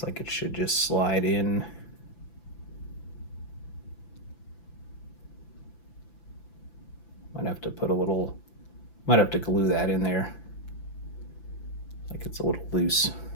like it should just slide in. Might have to glue that in there. Like it's a little loose,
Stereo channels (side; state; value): right; late; 5.9 ms